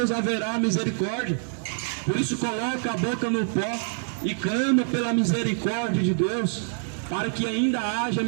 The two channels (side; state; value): left; silent; 57 dB below the other